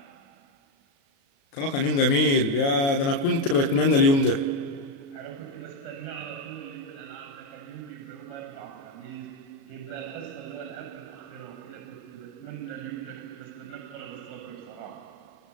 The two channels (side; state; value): right; late; 36 ms